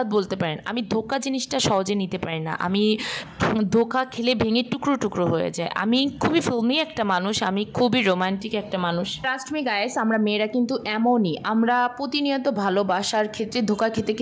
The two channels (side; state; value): both; identical; correlation 1.00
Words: বলতে পারেন। আমি ধোঁকা জিনিসটা সহজে নিতে পারি না। আমি ধোঁকা খেলে ভেঙে টুকরো টুকরো হয়ে যায়। আমি খুবই ফিল্মি একটা মানুষ, আমি খুবই রোমান্টিক একটা মানুষ। ট্রাস্ট মি গাইস, আমরা মেয়েরা কিন্তু এমনই, আমরা প্রতিনিয়ত ভালোবাসার ক্ষেত্রে ধোঁকা খেতে